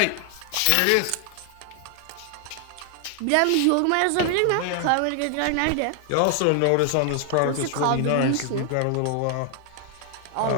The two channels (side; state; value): both; different; correlation 0.00